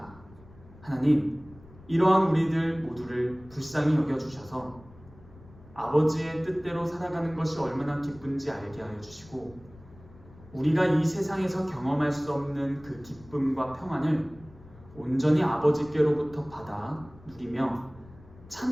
하나님, 이러한 우리들 모두를 불쌍히 여겨주셔서 아버지의 뜻대로 살아가는 것이 얼마나 기쁜지 알게 하여 주시고 우리가 이 세상에서 경험할 수 없는 그 기쁨과 평안을 온전히 아버지께로부터 받아 누리며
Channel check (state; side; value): noise; left; rumble, 22 dB below the sound